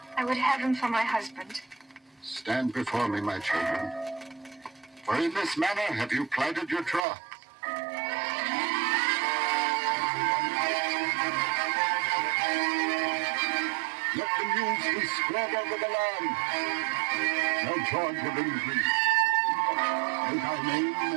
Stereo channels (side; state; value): left; drops out; at 7.1 s